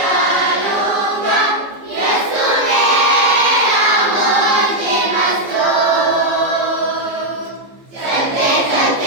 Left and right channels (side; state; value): left; late; 14 ms